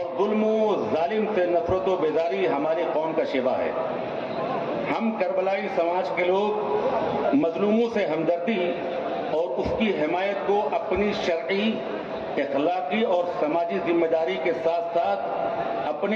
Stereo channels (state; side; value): identical; both; correlation 1.00